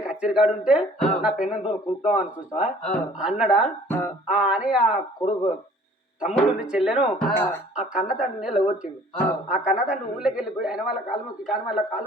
కచ్చేరి కాడు ఉంటే నా పెన్నంతో కుడుతాం అనుకుంటా అన్నడా అని ఆ కొడుకు తమ్ముడు చెల్లెను ఆ కన్న తండ్రిని లగొట్టిండు ఆ కన్న తండ్రి ఊళ్ళకి వెళ్ళిపోయి ఆయన వాళ్ళ కాలు మొక్కి కానీ వాళ్ళ కాలు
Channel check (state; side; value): normal; both; correlation 0.53